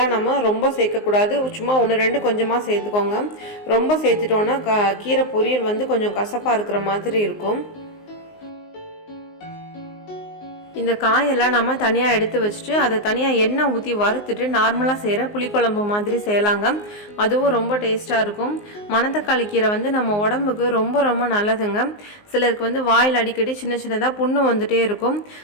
நம்ம ரொம்ப சேர்க்கக்கூடாது. சும்மா 1-2 கொஞ்சமாக சேர்த்துக்கோங்க. ரொம்ப சேர்த்துட்டோன்னா கீரை பொரியல் வந்து கொஞ்சம் கசப்பாக இருக்கிற மாதிரி இருக்கும். இந்த காயெல்லாம் நம்ம தனியாக எடுத்து வச்சுட்டு அதை தனியாக எண்ணெய் ஊற்றி வறுத்துட்டு நார்மலாக செய்கிற புளிக்குழம்பு மாதிரி செய்யலாங்க. அதுவும் ரொம்ப டேஸ்ட்டாக இருக்கும். மணத்தக்காளி கீரை வந்து நம்ம உடம்புக்கு ரொம்ப ரொம்ப நல்லதுங்க. சிலருக்கு வந்து வாயில் அடிக்கடி சின்ன சின்னதாக புண்ணு வந்துகிட்டே இருக்கும்.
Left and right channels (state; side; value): late; right; 19 ms